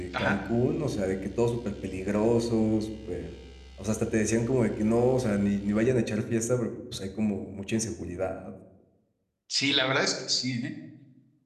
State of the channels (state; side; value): identical; both; correlation 1.00